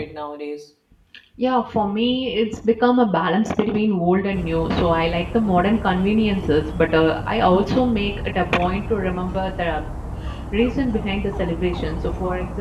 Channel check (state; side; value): identical; both; correlation 1.00